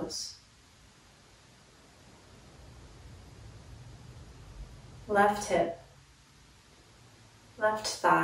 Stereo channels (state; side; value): identical; both; correlation 1.00